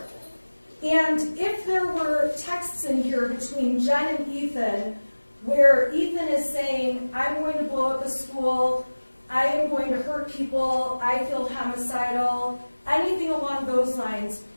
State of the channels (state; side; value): inverted; both; correlation -1.00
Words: And if there were texts in here between Jen and Ethan where Ethan is saying, I'm going to blow up a school, I am going to hurt people, I feel homicidal, anything along those lines,